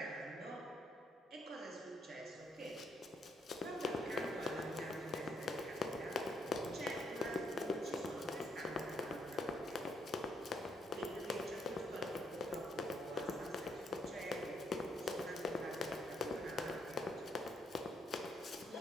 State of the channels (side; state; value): both; normal; correlation 0.73